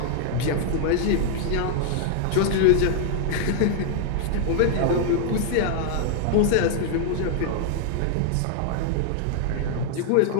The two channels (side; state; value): both; different; correlation -0.01